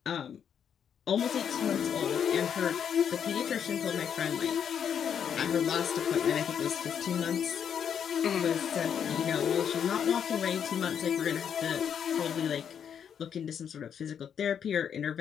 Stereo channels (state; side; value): quieter; right; 8.1 dB